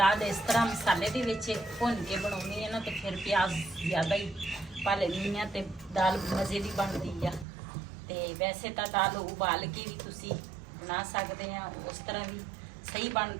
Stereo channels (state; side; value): drops out; left; at 7.5 s